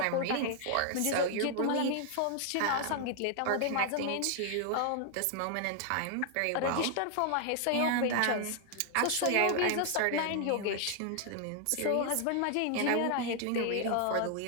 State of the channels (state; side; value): different; both; correlation 0.00